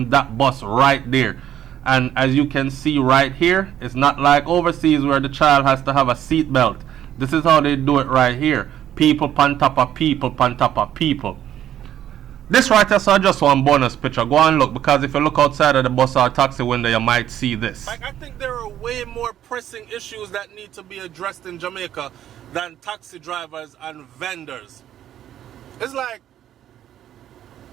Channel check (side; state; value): left; quieter; 11.2 dB